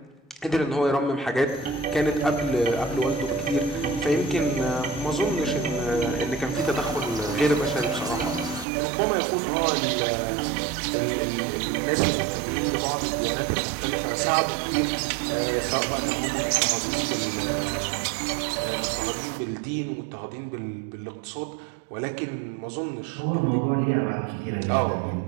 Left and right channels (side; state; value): left; drops out; at 8.7 s